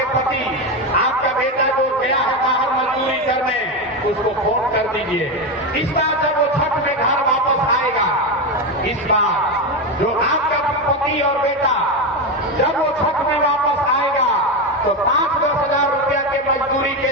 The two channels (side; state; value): both; normal; correlation 0.13